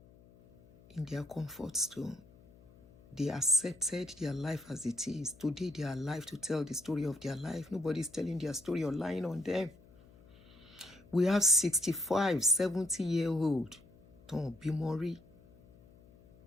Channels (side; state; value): left; noise; hum, 25 dB below the sound